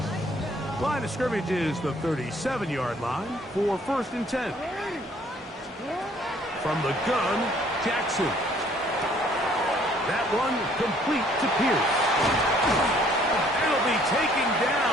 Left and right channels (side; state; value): both; normal; correlation 0.61